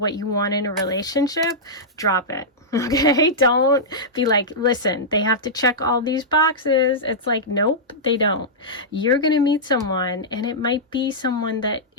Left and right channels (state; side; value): normal; both; correlation -0.11